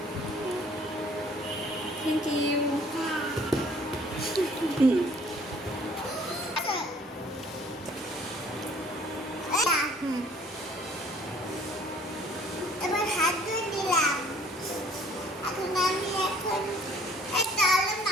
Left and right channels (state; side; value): normal; both; correlation 0.56